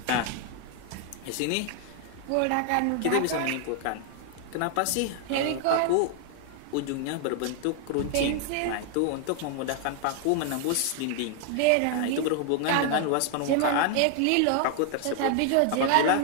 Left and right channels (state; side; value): different; both; correlation 0.00